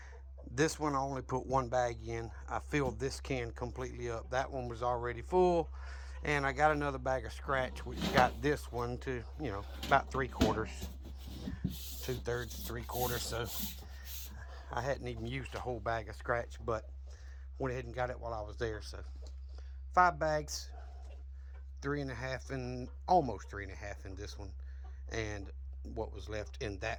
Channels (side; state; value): both; identical; correlation 1.00